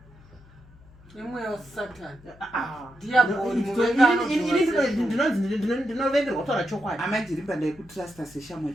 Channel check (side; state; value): left; noise; hum, 24 dB below the sound